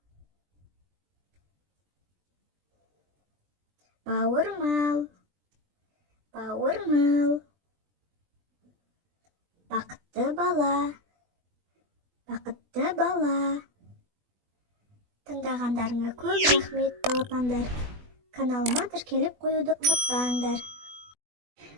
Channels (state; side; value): late; left; 20 ms